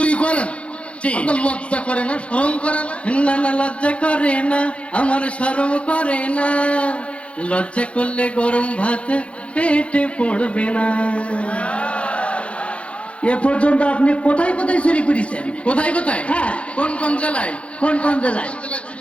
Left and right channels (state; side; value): late; right; 0.061 ms